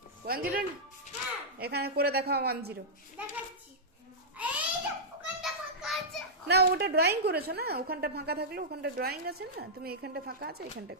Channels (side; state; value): both; normal; correlation -0.10